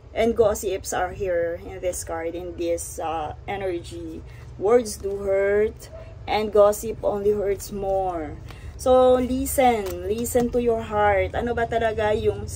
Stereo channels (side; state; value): both; identical; correlation 1.00